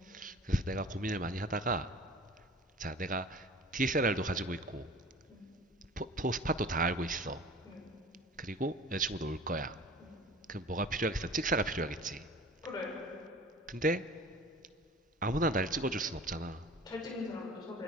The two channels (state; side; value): normal; both; correlation 0.42